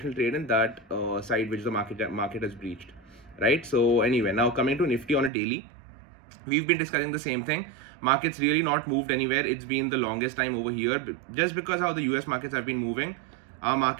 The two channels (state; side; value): drops out; left; at 5.3 s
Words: trade in that side which the market has breached, right? So anyway, now coming to Nifty on a daily, we've been discussing the same thing. Markets really not moved anywhere. It's been the longest time over here, just because how the US markets have been moving. Our